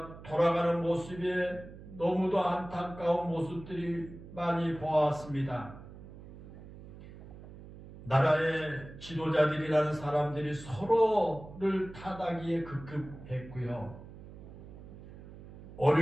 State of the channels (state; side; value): noise; right; hum, 16 dB below the sound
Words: 돌아가는 모습에 너무도 안타까운 모습들이 많이 보았습니다. 나라의 지도자들이라는 사람들이 서로를 타다기에 급급했고요.